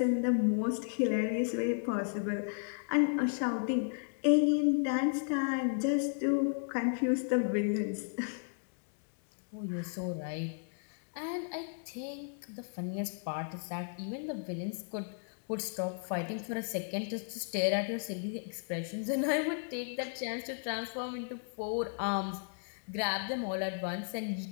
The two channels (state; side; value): silent; right; digital silence